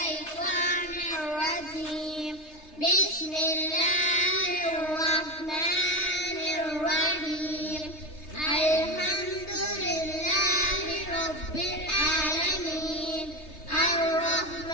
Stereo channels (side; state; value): right; late; 3.3 ms